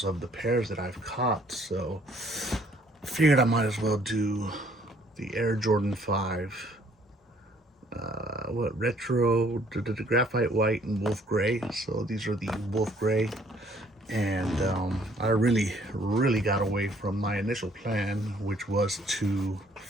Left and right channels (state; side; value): normal; both; correlation 0.62